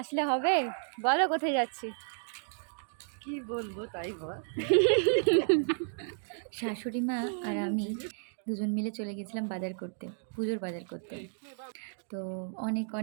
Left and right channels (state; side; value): silent; left; digital silence